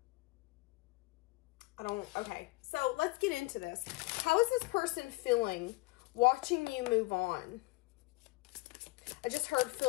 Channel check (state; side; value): quieter; right; 22.8 dB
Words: Okay, so let's get into this. How is this person feeling watching you move on? I just heard,